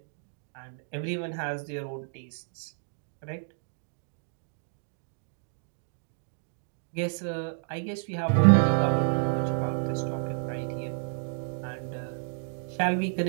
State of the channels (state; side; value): silent; left; digital silence